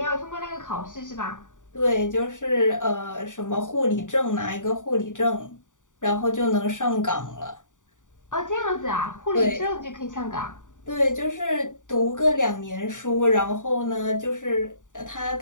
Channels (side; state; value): right; late; 0.86 ms